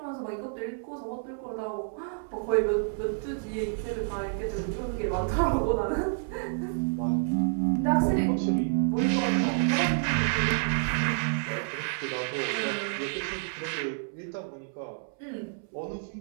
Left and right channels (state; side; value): silent; left; 58 dB below the other